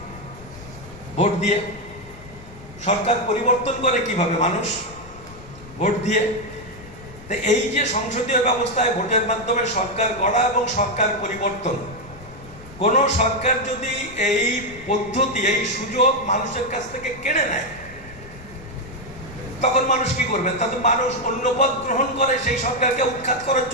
ভোট দিয়ে। সরকার পরিবর্তন করে কিভাবে? মানুষ ভোট দিয়ে। তো এই যে সংসদীয় ব্যবস্থায় ভোটের মাধ্যমে সরকার গড়া এবং সরকার পরিবর্তন, কোন সরকার যদি এই পদ্ধতি, এই সুযোগ মানুষের কাছ থেকে কেড়ে নেয়, তখন মানুষ কি করবে? তাতে মানুষ অন্য পথ গ্রহণ করে সেই সরকারকে উৎখাত করার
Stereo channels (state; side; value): noise; left; rumble, 19 dB below the sound